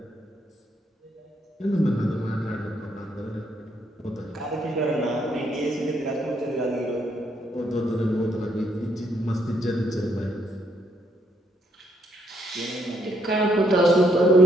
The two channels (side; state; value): both; normal; correlation 0.73